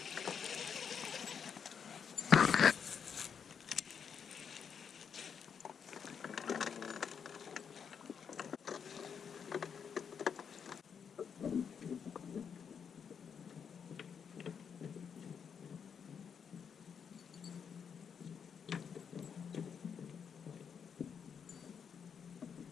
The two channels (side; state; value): right; quieter; 7.0 dB